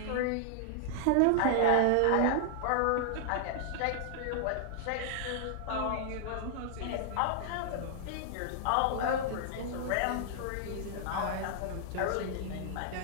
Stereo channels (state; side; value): different; both; correlation -0.01